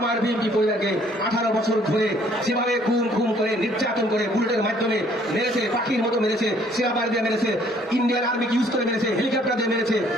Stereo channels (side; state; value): both; normal; correlation 0.61